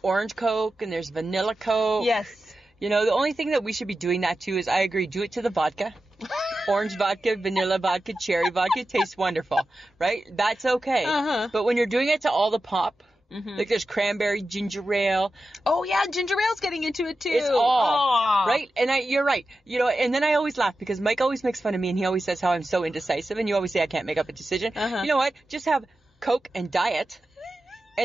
orange Coke and there's vanilla Coke. Yes. You know, the only thing that we should be doing that to is, I agree, do it to the vodka. Orange vodka, vanilla vodka, cherry vodka tastes wonderful, right? That's okay. Uh-huh. But when you're doing it to all the pop, like there's cranberry, ginger ale, Oh yeah, ginger ale's getting into it too. it's all, Aw. right? And you're right. You know, and then I always laugh because Mike always makes fun of me and he always says how I'm so indecisive and you always say I can't make up a decision. Uh-huh. You know what? Just have Coke and diet.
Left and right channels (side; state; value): both; normal; correlation 0.92